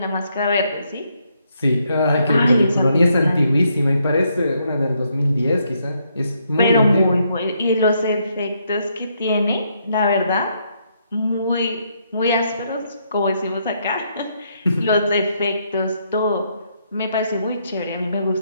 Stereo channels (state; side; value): inverted; both; correlation -0.74